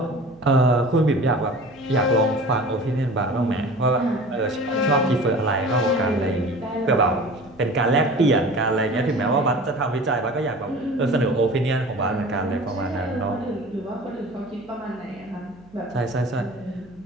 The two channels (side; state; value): right; noise; hum, 27 dB below the sound